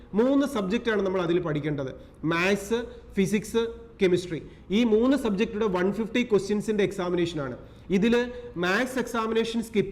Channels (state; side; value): identical; both; correlation 1.00